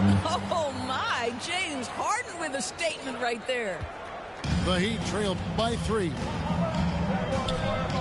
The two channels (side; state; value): both; identical; correlation 1.00